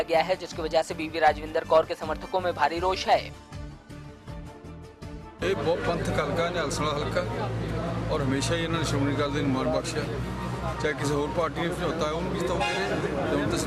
गया है, जिसकी वजह से बीवी राजविंदर कौर के समर्थकों में भारी रोष है। ਇਹ ਬਹੁਤ ਪੰਥਕ ਹਲਕਾ ਨਿਹਾਲਸਣਾ ਹਲਕਾ ਔਰ ਹਮੇਸ਼ਾ ਹੀ ਇਹਨਾਂ ਨੇ ਸ਼੍ਰੋਮਣੀ ਅਕਾਲੀ ਦਲ ਨੂੰ ਮਾਣ ਬਖਸ਼ਿਆ। ਚਾਹੇ ਕਿਸੇ ਹੋਰ ਪਾਰਟੀ ਨੇ ਸਮਝੌਤਾ ਉਹਨੂੰ ਵੀ ਜਿਤਾਉਂਦੇ ਰਹੇ, ਹੁਣ ਤਾਂ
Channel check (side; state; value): both; identical; correlation 1.00